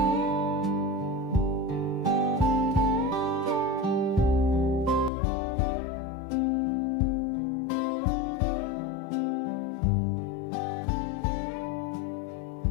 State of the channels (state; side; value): drops out; right; at 5.1 s